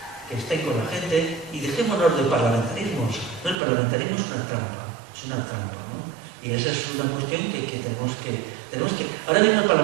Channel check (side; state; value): left; drops out; at 3.6 s